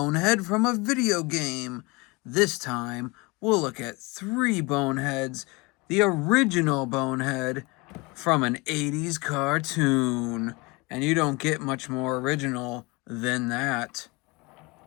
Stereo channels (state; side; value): quieter; right; 25.7 dB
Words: from a video game. This time, we'll look at three boneheads, the original bonehead from an 80s cartoon. And you don't get much more original than that.